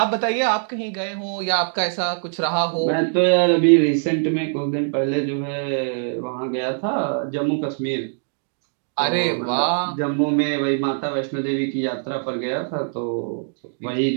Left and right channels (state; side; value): silent; left; digital silence